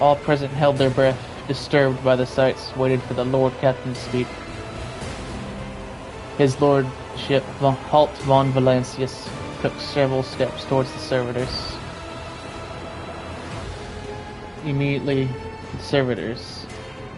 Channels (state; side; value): identical; both; correlation 1.00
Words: present held their breath, disturbed by the sights, waited for the Lord Captain to speak. His lordship, Halt von Valancius, took several steps towards the servitors. Immediately, the servitors,